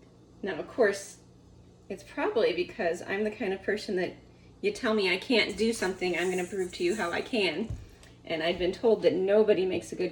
Now, of course, it's probably because I'm the kind of person that you tell me I can't do something, I'm going to prove to you how I can. And I've been told that nobody makes a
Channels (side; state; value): both; identical; correlation 1.00